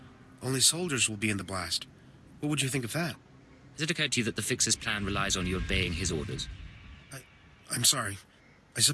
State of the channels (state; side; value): identical; both; correlation 1.00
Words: only soldiers will be in the blast. What would you think of that? Has it occurred to you that the Fixer's plan relies on you obeying his orders? I'm sorry. I